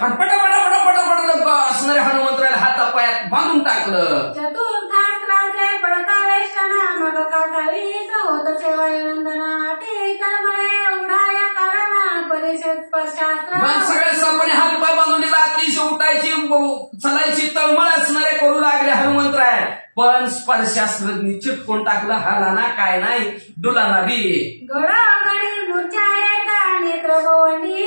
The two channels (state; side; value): inverted; both; correlation -1.00